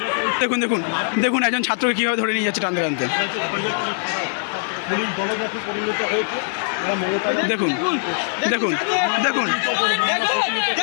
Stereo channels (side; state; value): right; silent; 61 dB below the other